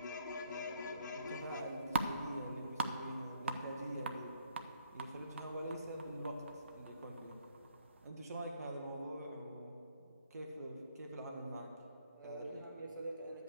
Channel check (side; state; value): both; inverted; correlation -0.67